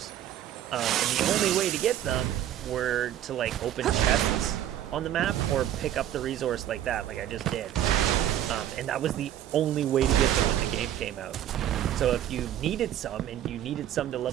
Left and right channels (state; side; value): quieter; left; 11.5 dB